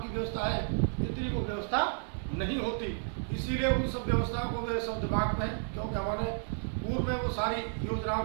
व्यवस्था है इतनी वो व्यवस्था नहीं होती। इसीलिए उन सब व्यवस्थाओं को मेरे सब दिमाग में है, क्योंकि हमारे पूर्व में वो सारी योजनाओं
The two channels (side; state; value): left; silent; 56 dB below the other